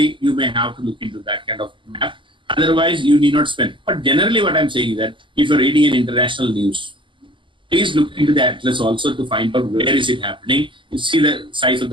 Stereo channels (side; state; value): left; late; 0.24 ms